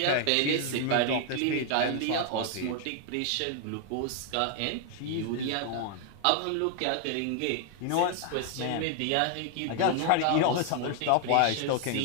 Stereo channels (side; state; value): both; different; correlation 0.00